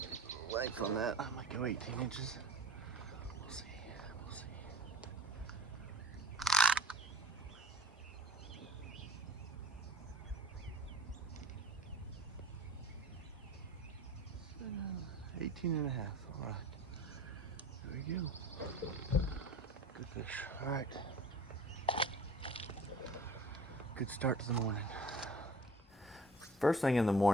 Length on that, I might go 18 inches. We'll see, we'll see. So, 18 and a half, all right. There we go. Good fish, all right. Good start to the morning. First thing in the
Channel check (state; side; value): normal; both; correlation 0.44